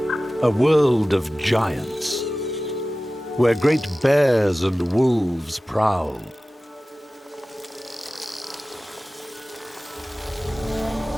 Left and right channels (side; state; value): both; normal; correlation 0.96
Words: a world of giants, where great bears and wolves prowl.